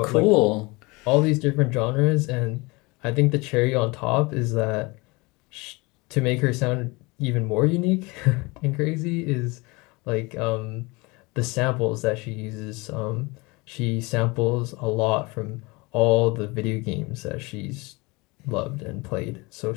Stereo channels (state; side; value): quieter; right; 25.3 dB